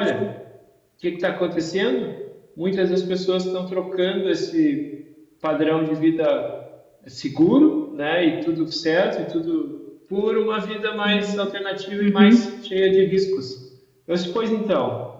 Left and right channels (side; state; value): both; identical; correlation 1.00